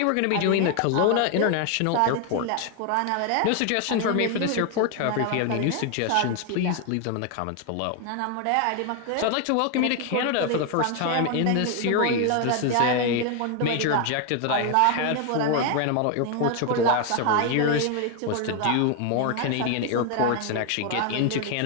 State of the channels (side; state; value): both; different; correlation 0.01